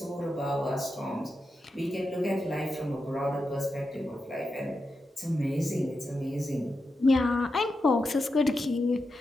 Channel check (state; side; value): normal; both; correlation 0.88